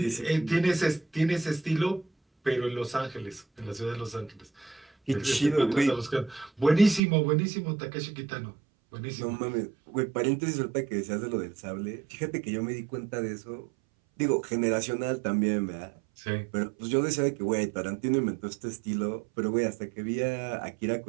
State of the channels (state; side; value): drops out; left; at 7.0 s